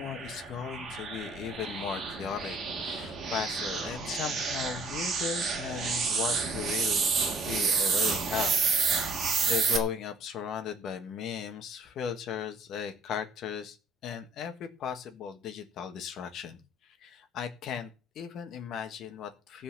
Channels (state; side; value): normal; both; correlation 0.57